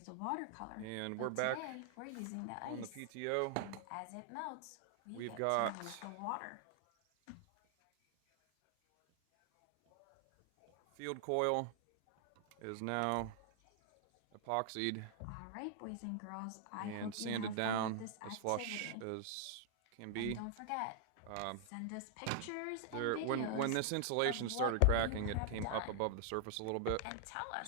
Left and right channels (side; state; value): both; different; correlation 0.00